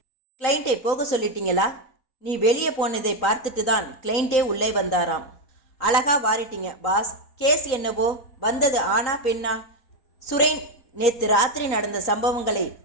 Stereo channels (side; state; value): right; late; 3.9 ms